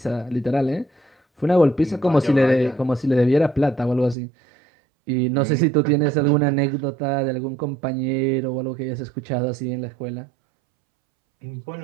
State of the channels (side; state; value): left; drops out; at 4.2 s